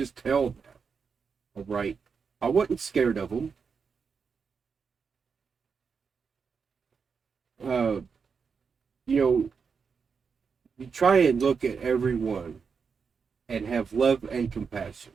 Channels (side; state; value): left; quieter; 5.7 dB